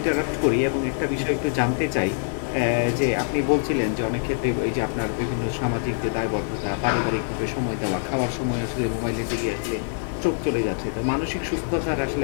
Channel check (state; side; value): silent; right; 62 dB below the other